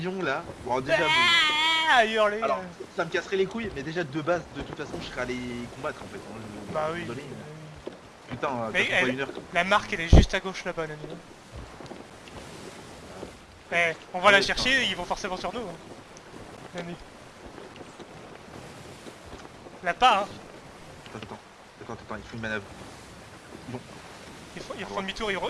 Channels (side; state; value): both; identical; correlation 1.00